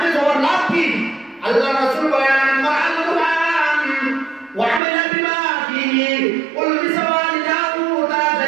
হওয়ার লাভ কি? আল্লাহ রাসূল বলেন, মা'আল কুরআন ওয়া আমালা বিমা ফীহি উলবিসা ওয়ালিদাহু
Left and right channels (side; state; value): left; drops out; at 4.8 s